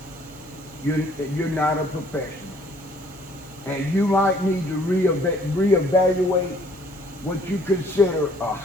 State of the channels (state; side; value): normal; both; correlation 0.60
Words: you're not a professional. And you might need to reevaluate what you consider a